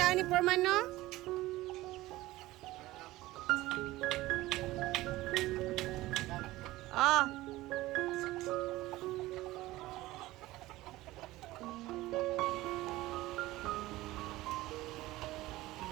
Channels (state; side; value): quieter; left; 17.8 dB